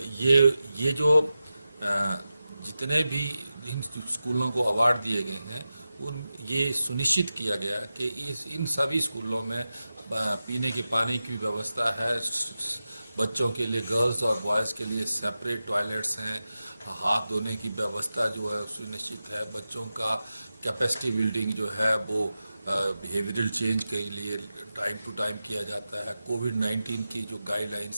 ये जो जितने भी इन स्कूलों को अवार्ड दिए गए हैं ये सुनिश्चित किया गया कि इन सभी स्कूलों में पीने के पानी की व्यवस्था है, बच्चों के लिए गर्ल्स और बॉयज़ के लिए सेपरेट टॉयलेट्स हैं, हाथ धोने की व्यवस्था जो है सुनिश्चित है, बच्चों का कैपेसिटी बिल्डिंग जो है वो बिहेवियरल चेंज के लिए टाइम टू टाइम किया जाता है, कोविड-19 की जो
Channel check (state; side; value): inverted; both; correlation -0.93